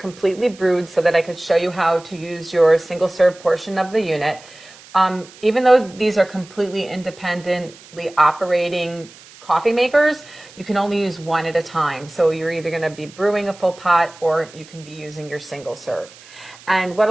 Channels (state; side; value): noise; right; hiss, 22 dB below the sound